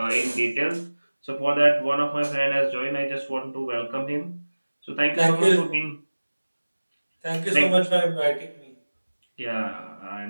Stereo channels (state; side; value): inverted; both; correlation -1.00